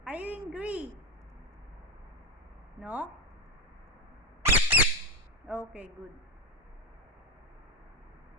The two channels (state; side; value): normal; both; correlation 0.10